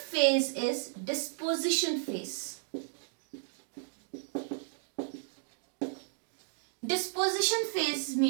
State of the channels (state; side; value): silent; left; digital silence